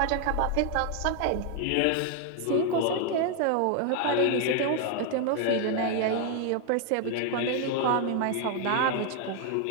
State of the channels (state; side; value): different; both; correlation 0.00